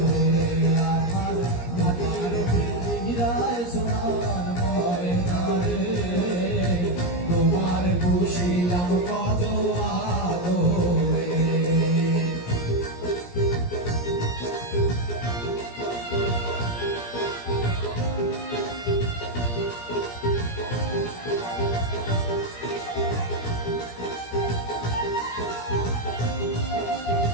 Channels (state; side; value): late; right; 17 ms